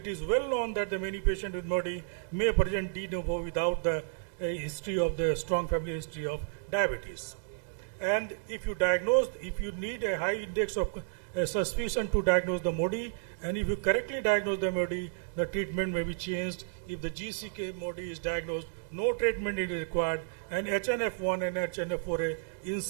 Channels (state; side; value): silent; left; digital silence